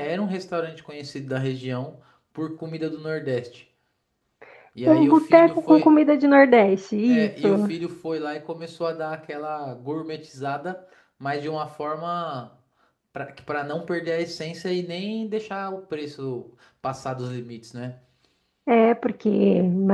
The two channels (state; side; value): identical; both; correlation 1.00